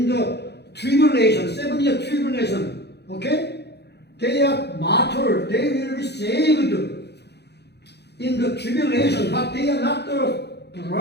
the tribulation, 7-year tribulation. Okay? They are martyrs. They will be saved in the tribulation, but they are not the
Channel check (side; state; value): right; late; 0.48 ms